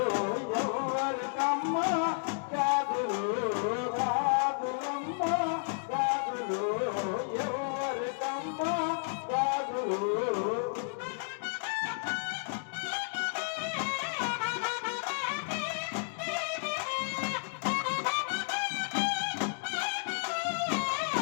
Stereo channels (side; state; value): right; silent; digital silence